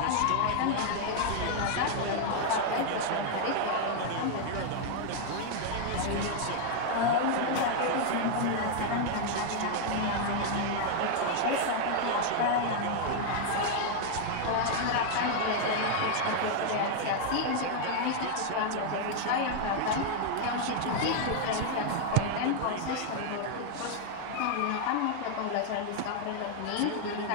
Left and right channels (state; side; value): different; both; correlation 0.00